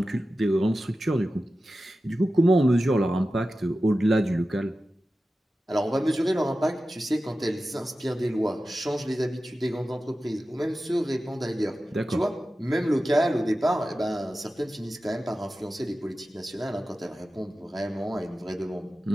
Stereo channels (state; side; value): normal; both; correlation 0.94